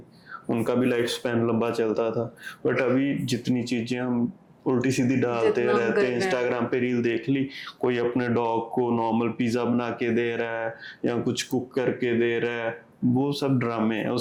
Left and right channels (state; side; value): identical; both; correlation 1.00